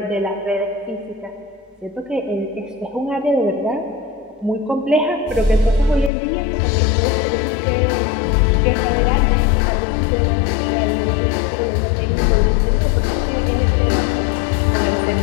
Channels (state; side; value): drops out; right; at 6.1 s